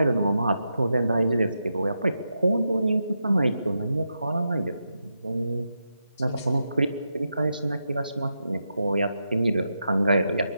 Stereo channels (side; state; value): both; inverted; correlation -0.86